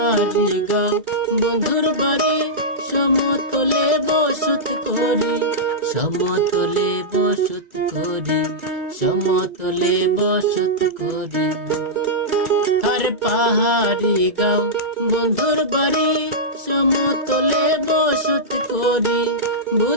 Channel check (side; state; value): left; late; 2.0 ms